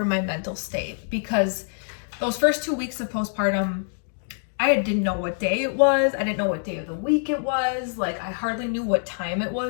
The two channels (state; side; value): silent; right; digital silence